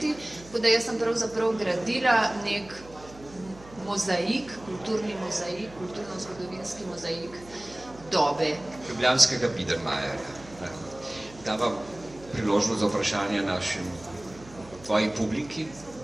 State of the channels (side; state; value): right; noise; hum, 20 dB below the sound